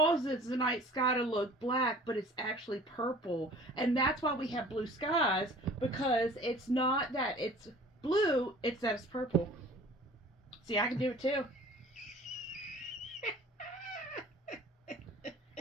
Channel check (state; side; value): normal; both; correlation 0.47